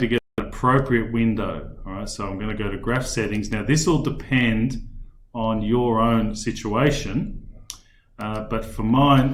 get an appropriate window. All right, so I'm going to go to graph settings. Now this will depend on your own situation. But for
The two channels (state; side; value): identical; both; correlation 1.00